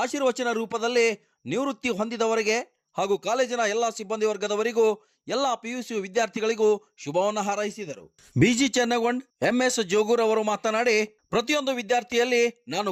ಆಶೀರ್ವಚನ ರೂಪದಲ್ಲಿ ನಿವೃತ್ತಿ ಹೊಂದಿದವರಿಗೆ ಹಾಗೂ ಕಾಲೇಜಿನ ಎಲ್ಲ ಸಿಬ್ಬಂದಿ ವರ್ಗದವರಿಗೂ ಎಲ್ಲ PUC ವಿದ್ಯಾರ್ಥಿಗಳಿಗೂ ಶುಭವನ್ನು ಹಾರೈಸಿದರು. BG ಚೆನ್ನಗೊಂಡ್, MS ಜೋಗೂರ್ ಅವರು ಮಾತನಾಡಿ, ಪ್ರತಿಯೊಂದು ವಿದ್ಯಾರ್ಥಿಯಲ್ಲಿ ನಾನು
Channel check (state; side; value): identical; both; correlation 1.00